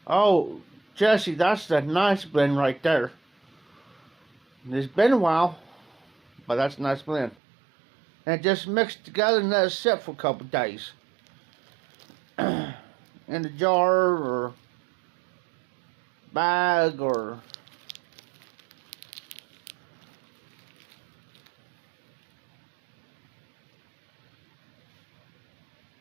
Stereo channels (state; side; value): drops out; left; at 7.4 s